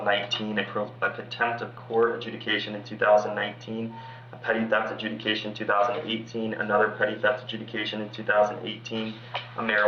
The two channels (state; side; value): identical; both; correlation 1.00